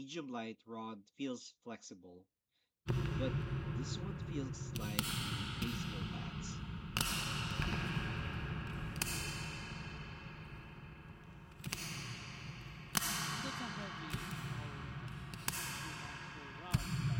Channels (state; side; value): identical; both; correlation 1.00